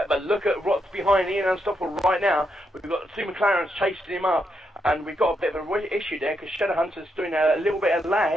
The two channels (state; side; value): normal; both; correlation 0.81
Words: but look at what's behind Ian Unstoppable right now. We've got two McLarens chasing him up, and we've got a bit of an issue there because Shadowhunter's doing a little bit of